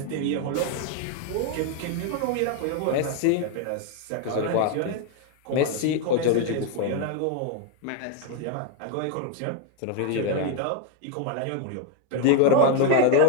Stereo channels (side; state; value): both; different; correlation 0.01